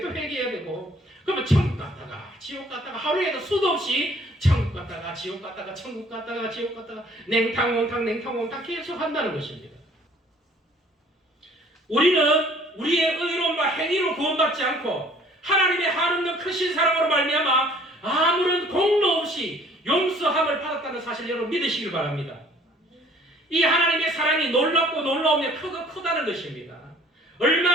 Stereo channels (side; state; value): both; normal; correlation 0.56